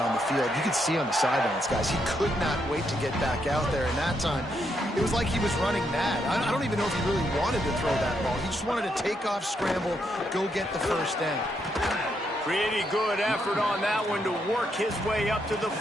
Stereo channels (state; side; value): normal; both; correlation 0.78